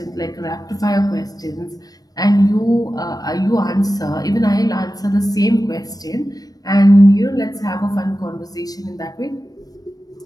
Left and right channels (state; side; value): late; right; 0.18 ms